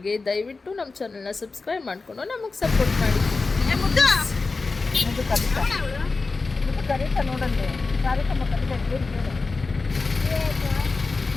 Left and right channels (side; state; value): right; quieter; 3.9 dB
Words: ದಯವಿಟ್ಟು ನಮ್ಮ ಚಾನಲ್ನ ಸಬ್ಸ್ಕ್ರೈಬ್ ಮಾಡಿಕೊಂಡು ನಮಗೆ ಸಪೋರ್ಟ್ ಮಾಡಿ. ಕರೀತಾ ನೋಡಂತೆ ಕಾರ್ಯಕ್ರಮ